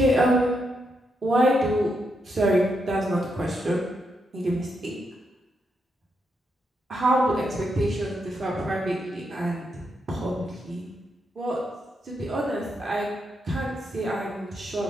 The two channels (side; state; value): both; normal; correlation 0.81